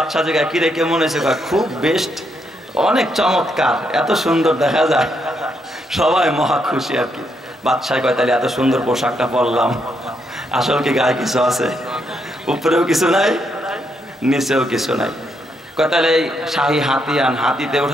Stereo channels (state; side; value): normal; both; correlation 0.77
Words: জায়গায় কিরে কেমন হয়েছে? খুব বেস্ট, অনেক চমৎকার, এত সুন্দর দেখা যায়। সবাই মহা খুশি আর কি। বাদশাহ কয় তাহলে এত সুন্দর পোশাকটা পরলাম, আসল কি গায়ে কিছু আছে? উপরেও কিছু নাই, নিচেও কিছু নাই। কয় তাহলে এই শাহী হাতি আন, হাতিতে